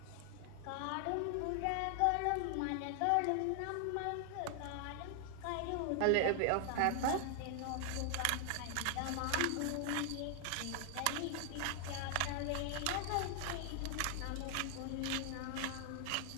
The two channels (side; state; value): both; different; correlation 0.00